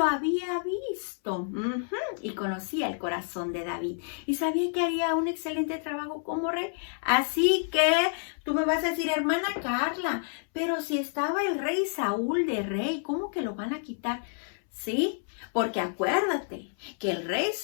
había visto y conocía el corazón de David y sabía que haría un excelente trabajo como rey. Así que tú me vas a decir, hermana Carla, pero si estaba el rey Saúl de rey, ¿cómo que lo van a quitar? Sí, porque acuérdate que el rey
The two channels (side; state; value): right; silent; 59 dB below the other